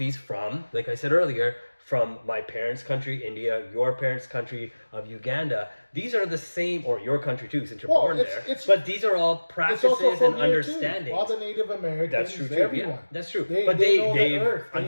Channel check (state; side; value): inverted; both; correlation -1.00